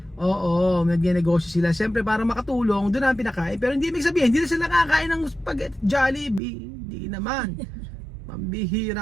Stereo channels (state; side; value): drops out; left; at 6.4 s